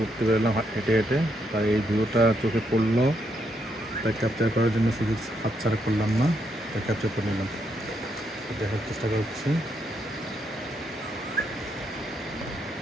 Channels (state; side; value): normal; both; correlation 0.77